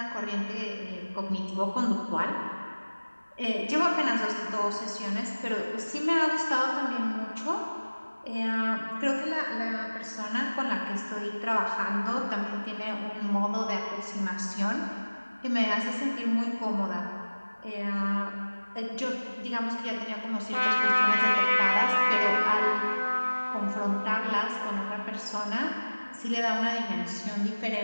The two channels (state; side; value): inverted; both; correlation -1.00